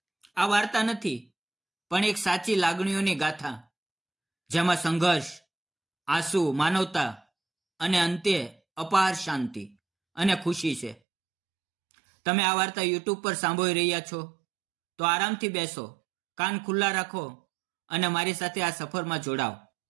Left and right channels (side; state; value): left; drops out; at 11.0 s